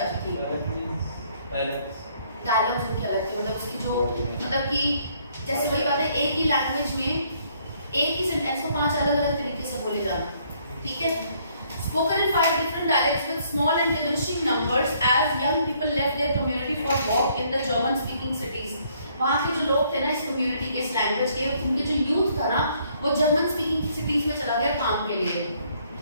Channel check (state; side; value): inverted; both; correlation -0.66